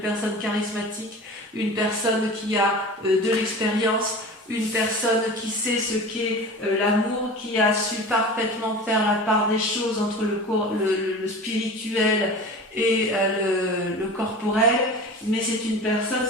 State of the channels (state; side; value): normal; both; correlation 0.35